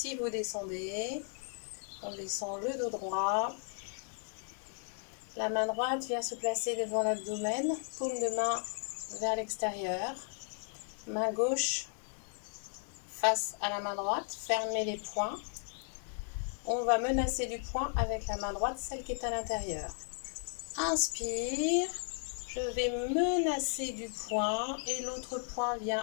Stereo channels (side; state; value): right; silent; 54 dB below the other